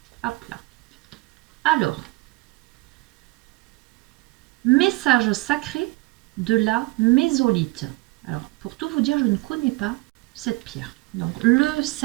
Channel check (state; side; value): quieter; left; 22.8 dB